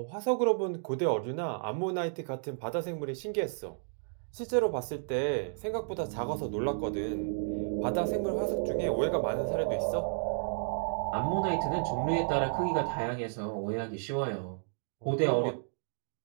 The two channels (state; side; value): silent; left; digital silence